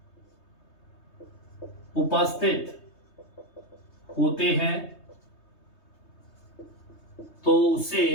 उपस्थित होते हैं, तो उसे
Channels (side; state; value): right; late; 3.2 ms